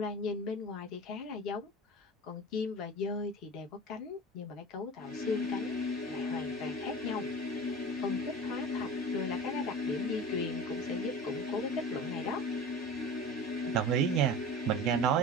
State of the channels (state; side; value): normal; both; correlation 0.35